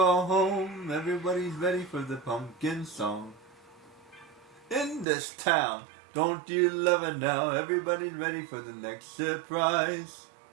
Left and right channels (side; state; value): left; drops out; at 5.1 s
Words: home, everybody's ready for the pumpkin song. In this town, don't you love it now? Everybody's ready for the next surprise.